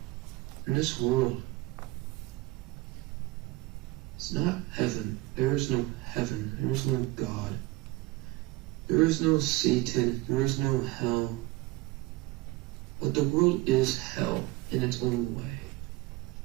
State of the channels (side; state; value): left; quieter; 20.7 dB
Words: In this world, it's not heaven. There is no heaven. There is no God. There is no Satan. There is no hell. But the world is hell in its own way.